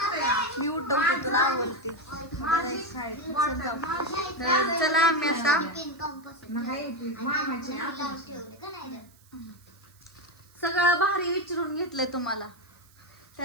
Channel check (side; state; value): right; noise; hiss, 29 dB below the sound